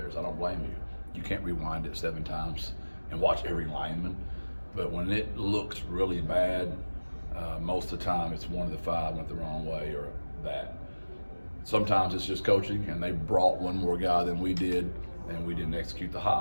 I don't blame you. You can't rewind it 7 times and watch every lineman. But when it looks really bad, most of the time it's one of the 5 went the wrong way or that. Sometimes it's just coaching, and they brought one more guy than we did, and we didn't execute the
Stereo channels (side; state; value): both; inverted; correlation -1.00